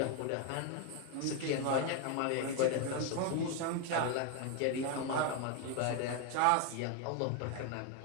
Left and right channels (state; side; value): different; both; correlation 0.01